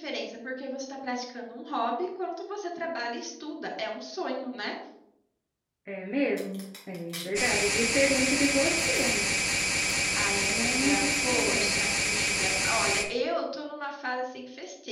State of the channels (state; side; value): identical; both; correlation 1.00